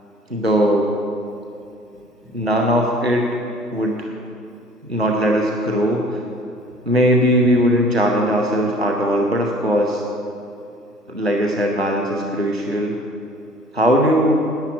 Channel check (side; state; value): both; normal; correlation 0.51